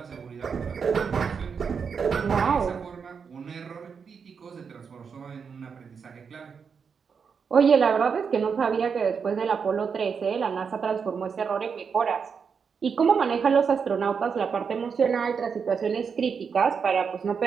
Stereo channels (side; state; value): left; quieter; 6.1 dB